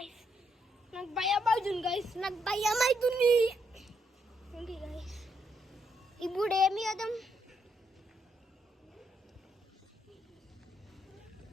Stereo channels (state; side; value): normal; both; correlation 0.76